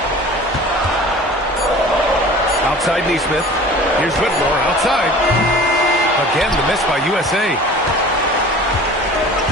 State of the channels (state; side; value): normal; both; correlation 0.42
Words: Outside Nesmith. Here's Whitmore outside. Again the miss by USA.